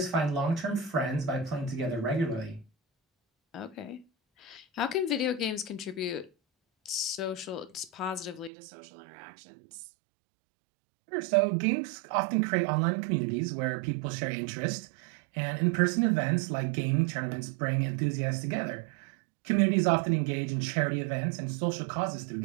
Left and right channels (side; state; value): left; drops out; at 8.5 s